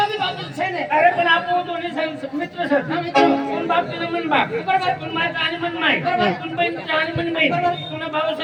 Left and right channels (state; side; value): identical; both; correlation 1.00